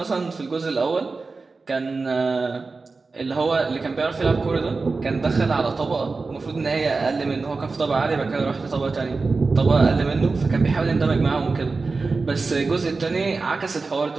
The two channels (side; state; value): left; quieter; 4.0 dB